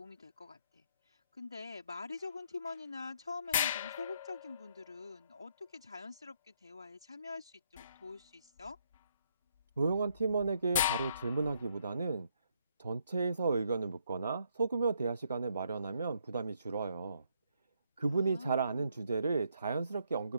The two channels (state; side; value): inverted; both; correlation -0.72